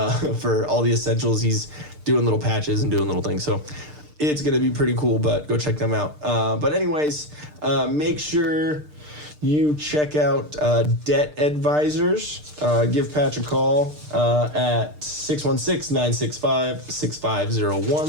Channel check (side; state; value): left; late; 6.6 ms